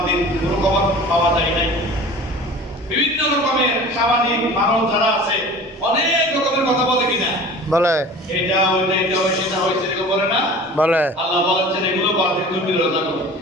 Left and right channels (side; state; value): both; normal; correlation 0.41